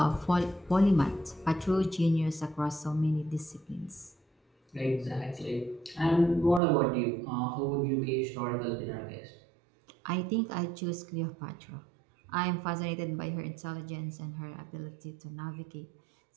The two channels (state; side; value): drops out; left; at 6.6 s